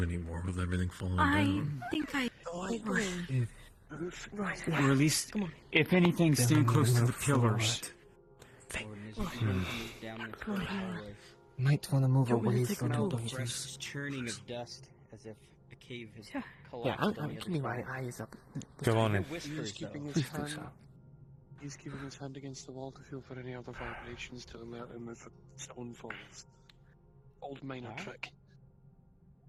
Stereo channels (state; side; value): identical; both; correlation 1.00